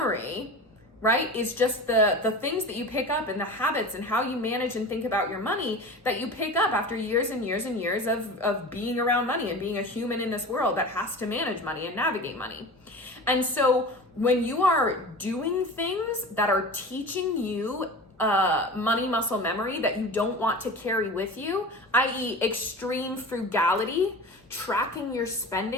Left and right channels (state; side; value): normal; both; correlation 0.34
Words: right, is just the things that you pick up and the habits and how you manage and think about your money that you pick up after years and years and years of being around money and being a human in this world that has to manage money and navigate money. And so when you are doing things that are teaching you money muscle memory that you don't want to carry with you, i.e. extreme frugality, tracking your